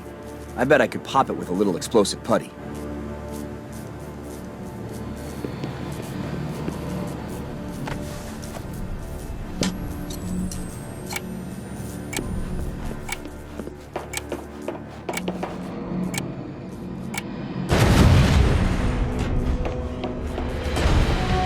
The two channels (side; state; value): both; identical; correlation 1.00